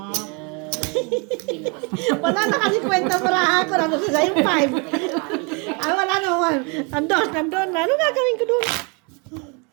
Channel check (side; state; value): left; quieter; 32.9 dB